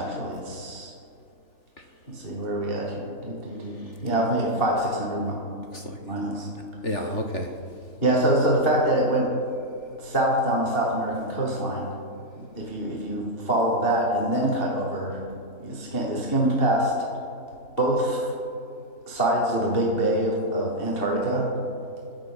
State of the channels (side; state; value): right; late; 3.4 ms